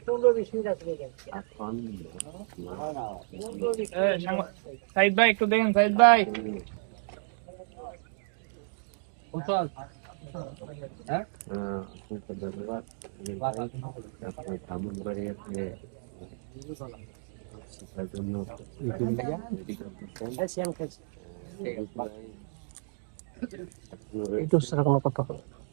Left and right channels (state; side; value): silent; left; digital silence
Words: সাইদ ভাই একটু দেখেন, সাইদ ভাই। ধন্যবাদ আপনার ভ্রমণ করে শিক্ষার জন্য একটু সেরকম কথা হবে।